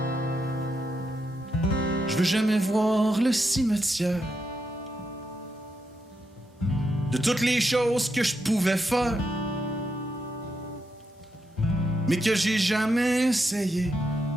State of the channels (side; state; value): both; normal; correlation 0.83